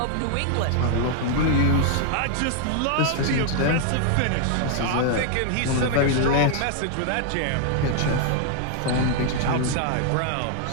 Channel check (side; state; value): both; different; correlation 0.00